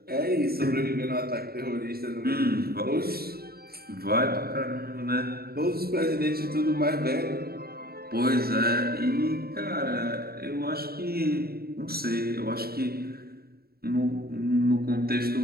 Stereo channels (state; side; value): late; left; 0.45 ms